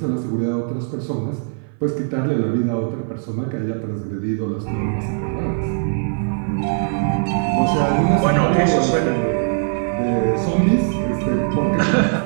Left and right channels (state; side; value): silent; left; 58 dB below the other